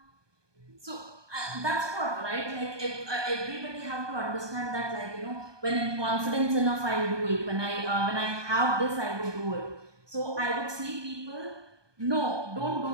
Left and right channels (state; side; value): late; left; 1.2 ms